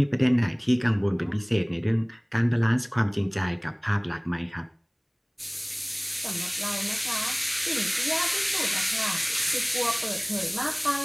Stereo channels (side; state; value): both; identical; correlation 1.00